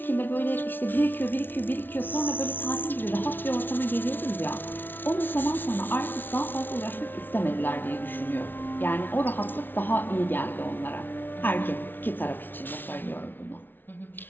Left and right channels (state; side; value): late; right; 0.096 ms